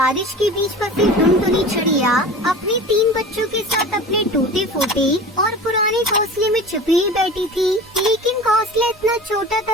के बीच फंसी टुनटुनी चिड़िया अपने 3 बच्चों के साथ अपने टूटे फूटे और पुराने घोंसले में छुपी ही बैठी थी। लेकिन घोंसला इतना छोटा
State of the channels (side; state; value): both; normal; correlation 0.36